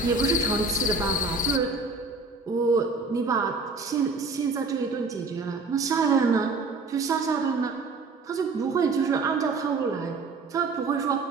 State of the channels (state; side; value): quieter; left; 3.8 dB